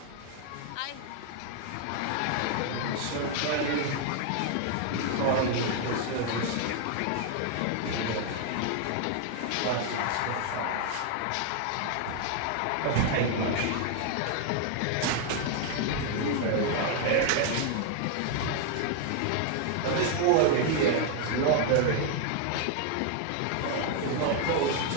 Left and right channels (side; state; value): both; different; correlation 0.00